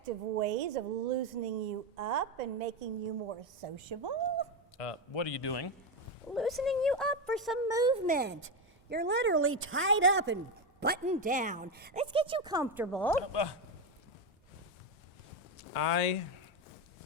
ways of loosening you up and making you more sociable. What are you doing? Loosening you up for some movement. You're literally tied up and buttoned down. Let's get you comfortable. I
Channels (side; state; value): both; normal; correlation 0.10